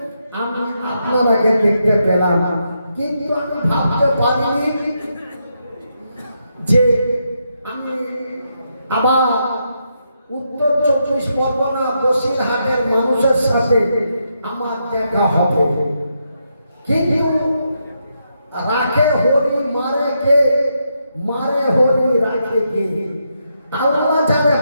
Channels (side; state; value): both; inverted; correlation -0.81